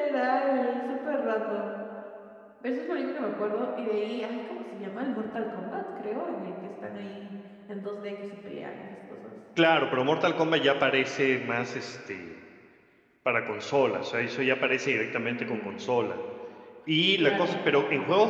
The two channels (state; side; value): identical; both; correlation 1.00